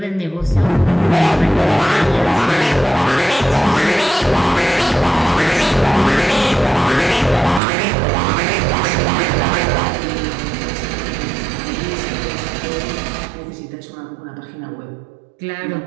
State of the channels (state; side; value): drops out; left; at 7.6 s